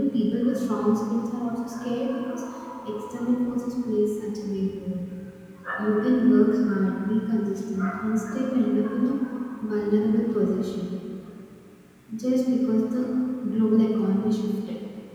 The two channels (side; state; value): both; identical; correlation 1.00